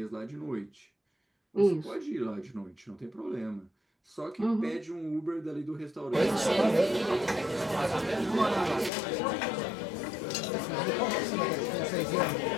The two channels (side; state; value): right; drops out; at 8.9 s